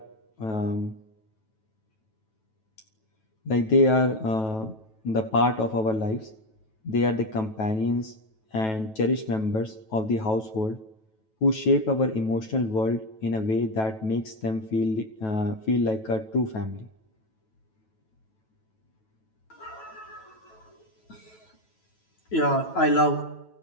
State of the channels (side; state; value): right; late; 9.2 ms